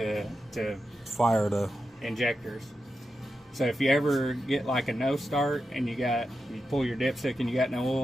fire the injectors. So if you ever get like a no start and you pull your dipstick and you got no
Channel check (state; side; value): normal; both; correlation 0.89